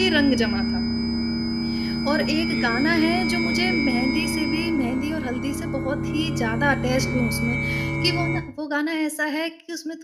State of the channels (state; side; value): identical; both; correlation 1.00